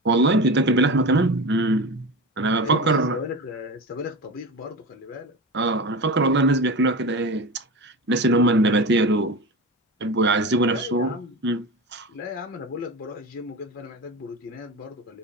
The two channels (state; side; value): normal; both; correlation 0.26